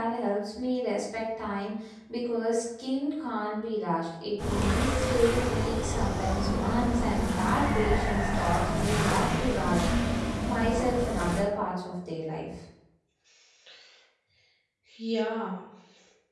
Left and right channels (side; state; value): both; identical; correlation 1.00